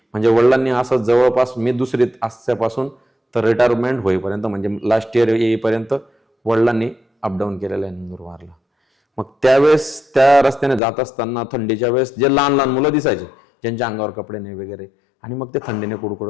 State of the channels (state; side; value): drops out; right; at 10.8 s